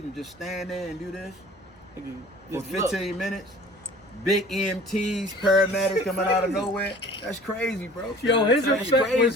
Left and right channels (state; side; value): normal; both; correlation 0.47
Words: and just stand there and do this for Just look. 15 minutes, big EMTs, paramedics coming out of nowhere. That's crazy, bro. Yo, his That's effect